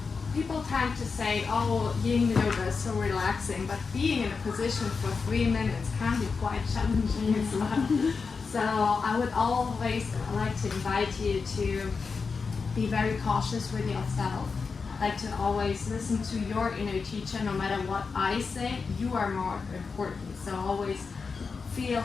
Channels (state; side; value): quieter; right; 4.9 dB